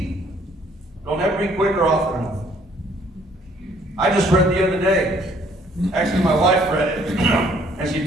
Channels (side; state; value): both; normal; correlation 0.62